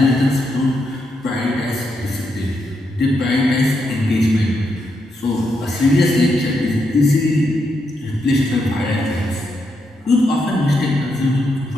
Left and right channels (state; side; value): normal; both; correlation 0.81